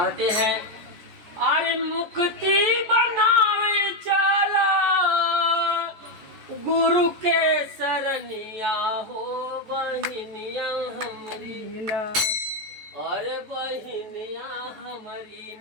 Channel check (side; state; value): left; late; 14 ms